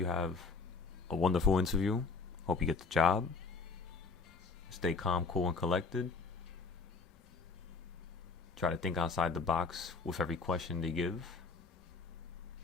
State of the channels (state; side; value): quieter; right; 4.4 dB